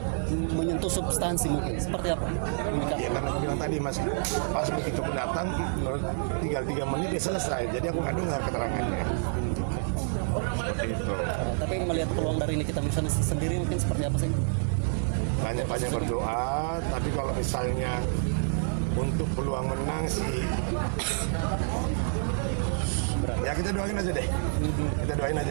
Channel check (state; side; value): silent; left; 59 dB below the other